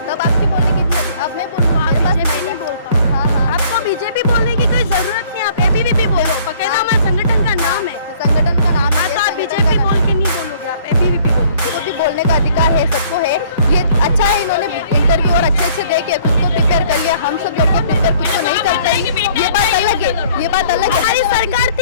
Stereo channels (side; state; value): both; inverted; correlation -0.57